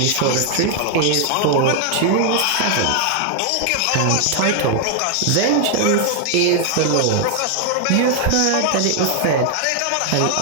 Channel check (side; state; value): both; different; correlation 0.00